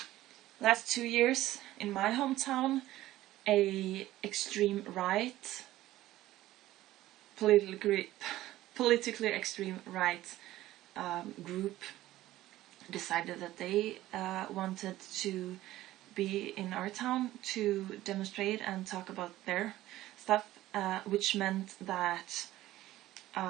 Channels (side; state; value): left; quieter; 15.4 dB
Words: 2 years in my hometown, a extreme right, politically extreme right group decided that they wanted to be in our town to demonstrate and talk about their stuff, which meant that